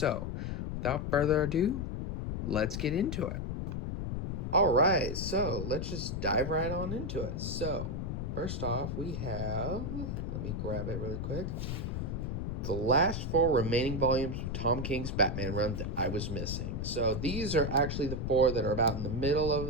without further ado, let's get into it. Alright, so let's just dive right on into it. So, first off, we have, let me grab it really quick, the last four remaining volumes of Tom King's Batman run that I was missing. So these are actually the four that are about in the middle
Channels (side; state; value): left; noise; rumble, 3 dB below the sound